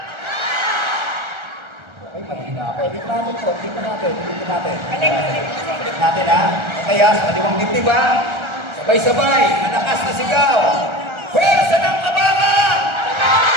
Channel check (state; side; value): late; left; 1.3 ms